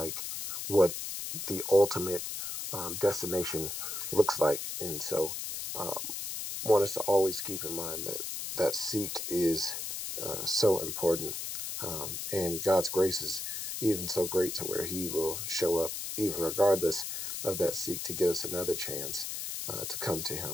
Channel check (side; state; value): left; noise; hiss, 5 dB below the sound